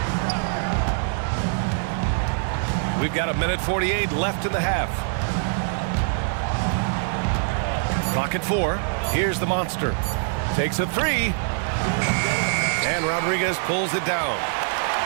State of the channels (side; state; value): left; silent; 62 dB below the other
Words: We've got 1:48 left in the half. Clock at 4. Here's the monster. Takes a 3. And Rodriguez pulls it down.